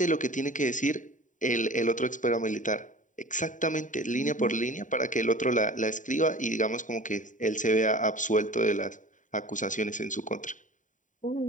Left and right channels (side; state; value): right; late; 0.37 ms